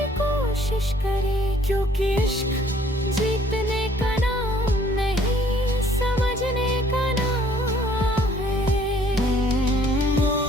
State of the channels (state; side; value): normal; both; correlation 0.60